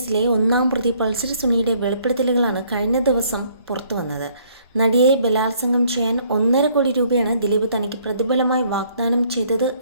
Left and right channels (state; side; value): inverted; both; correlation -0.63